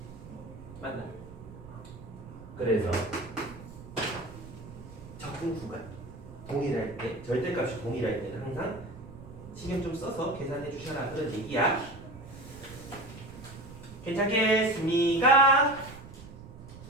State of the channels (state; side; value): noise; right; rumble, 16 dB below the sound